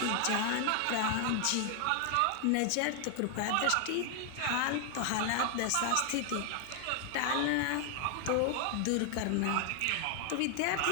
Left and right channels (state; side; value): different; both; correlation 0.00